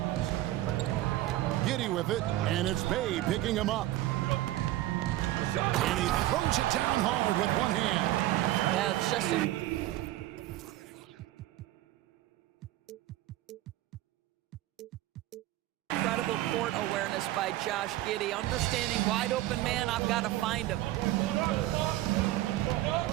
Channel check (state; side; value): quieter; left; 15.5 dB